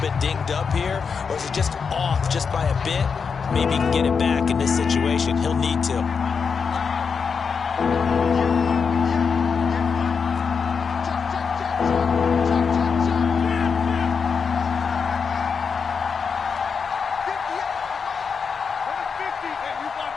bit dinged up here, or is he just off just by a bit? Maybe he can get it back in this situation. He'll need to.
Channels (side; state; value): right; quieter; 5.8 dB